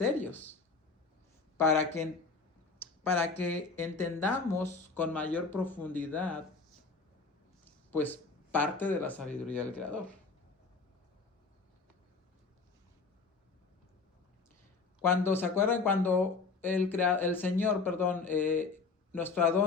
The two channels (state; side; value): quieter; right; 4.3 dB